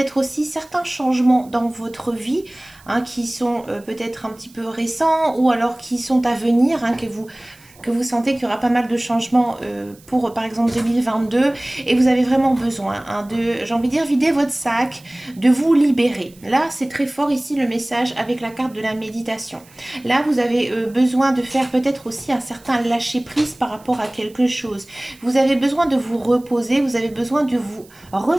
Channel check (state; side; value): noise; right; hiss, 26 dB below the sound